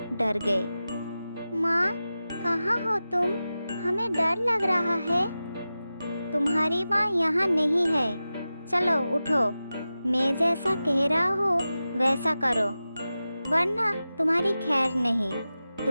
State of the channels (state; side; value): inverted; both; correlation -0.94